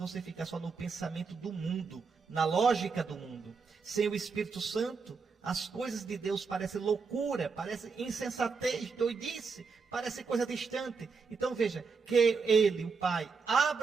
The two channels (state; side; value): quieter; left; 5.0 dB